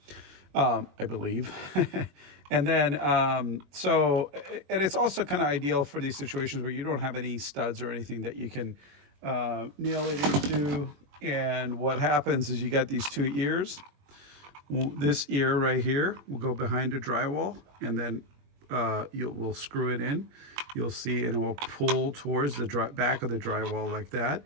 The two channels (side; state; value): left; late; 21 ms